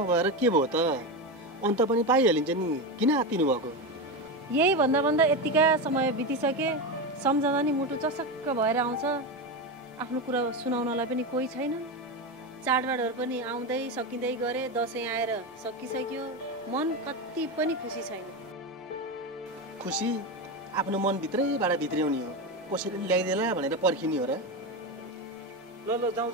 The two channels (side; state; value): both; normal; correlation 0.16